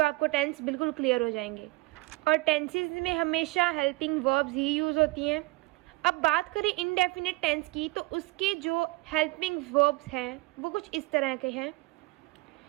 आपको टेंस बिल्कुल क्लियर हो जाएंगे। और टेंसेस में हमेशा हेल्पिंग वर्ब्स ही यूज़ होती हैं। अब बात करें इनडेफिनिट टेंस की, तो उसके जो हेल्पिंग वर्ब्स हैं वो कुछ इस तरह के हैं।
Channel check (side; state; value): left; quieter; 22.6 dB